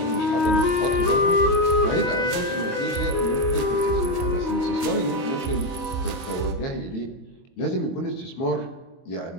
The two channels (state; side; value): late; right; 22 ms